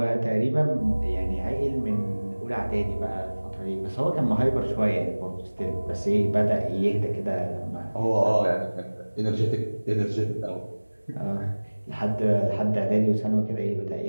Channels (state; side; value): inverted; both; correlation -1.00